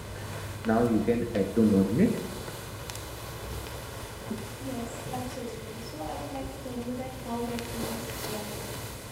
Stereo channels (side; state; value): both; identical; correlation 1.00